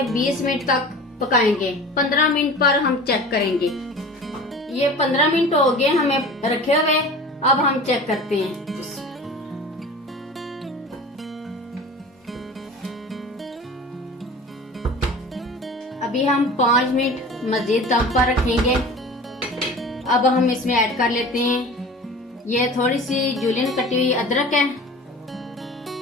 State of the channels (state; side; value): normal; both; correlation 0.38